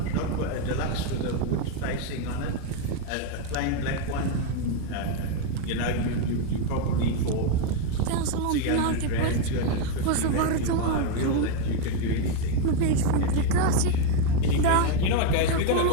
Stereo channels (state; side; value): different; both; correlation 0.01